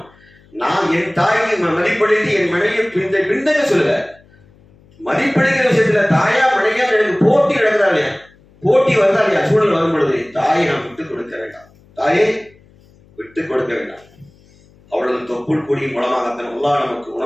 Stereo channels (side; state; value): left; noise; hum, 29 dB below the sound